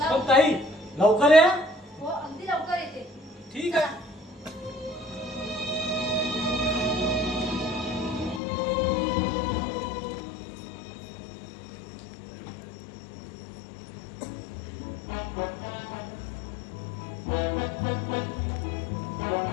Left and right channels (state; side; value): drops out; right; at 8.4 s